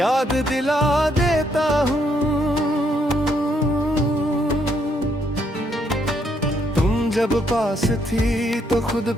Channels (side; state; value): both; normal; correlation 0.73